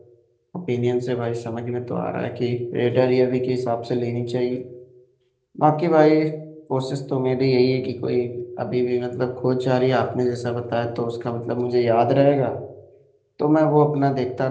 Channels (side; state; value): both; identical; correlation 1.00